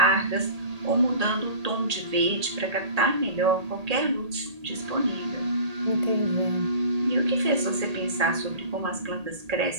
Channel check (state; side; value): late; left; 1.8 ms